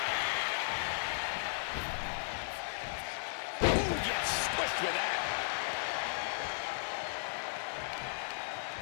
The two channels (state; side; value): silent; right; digital silence